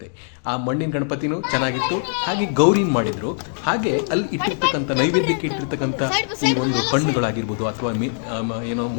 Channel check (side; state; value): right; silent; digital silence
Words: ಆ ಮಣ್ಣಿನ ಗಣಪತಿನೂ ಚೆನ್ನಾಗಿತ್ತು. ಹಾಗೆ ಗೌರಿನ ಮಾಡಿದರು. ಹಾಗೆ ಅಲ್ಲಿ ಇಟ್ಟಿರ್ತಕ್ಕಂಥ ನೈವೇದ್ಯಕ್ಕೆ ಇಟ್ಟಿರ್ತಕ್ಕಂಥ ಈ ಒಂದು ಹಣ್ಣುಗಳಾಗಿರ್ಬೋದು ಅಥವಾ ಏನೋ